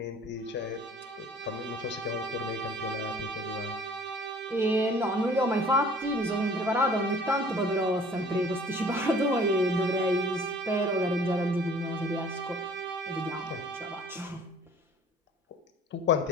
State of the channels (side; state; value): both; normal; correlation 0.51